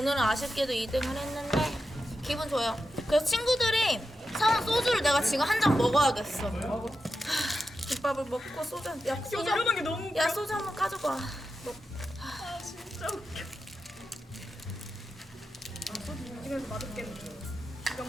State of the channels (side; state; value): both; normal; correlation 0.89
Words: 아쉽게도 2등을 했는데 기분 좋아요. 그래서 친구들이 사온 소주를 내가 지금 한 잔 먹어야겠어. 김밥을 먹고 소주 이러는 게 너무 웃겨. 야 소주 한번 가져가. 진짜 웃겨. 소주 이쪽에서 맛없겠네. 이거